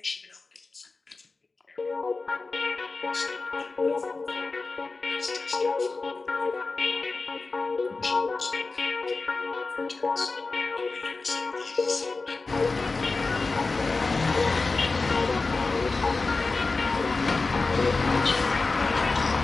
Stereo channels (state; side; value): quieter; right; 3.8 dB